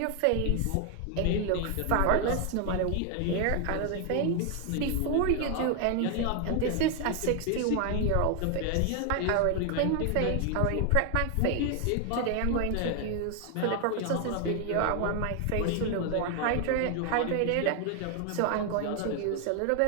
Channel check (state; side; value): different; both; correlation 0.00